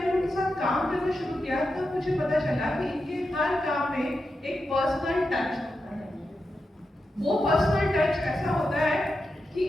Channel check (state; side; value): normal; both; correlation 0.89